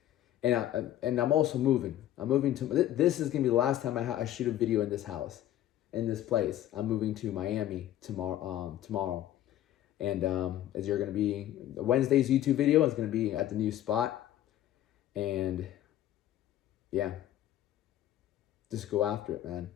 And I'm also moving. I'm moving to, this is going to be the last time I shoot a video in this house, in this place. I'm moving to Miami tomorrow. And as you're going to be, Wednesday's YouTube video is going to be at the new spot. And yeah, just go after it, man.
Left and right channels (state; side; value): quieter; right; 12.6 dB